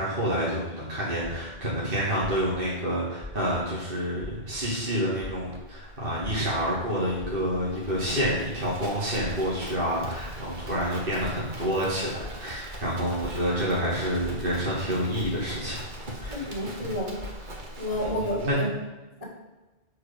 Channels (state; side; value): late; left; 2.2 ms